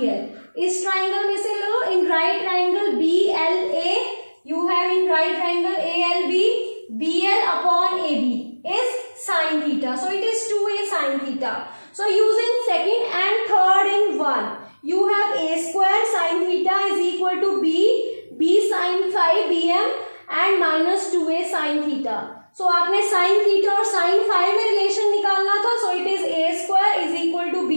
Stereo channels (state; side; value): inverted; both; correlation -1.00